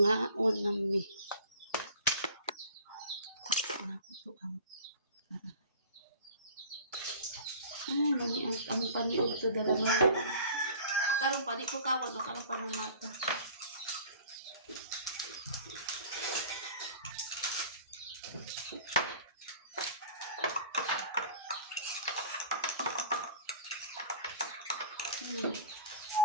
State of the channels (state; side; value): inverted; both; correlation -0.44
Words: unami. Sana ko to ang karahay. Ay, nani ang paniod to dala mo. Karong pa, di ko kawan o karong pa ng mata.